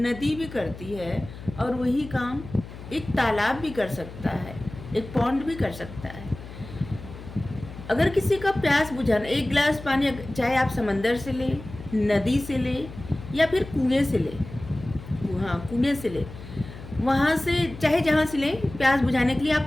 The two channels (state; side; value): noise; left; hum, 14 dB below the sound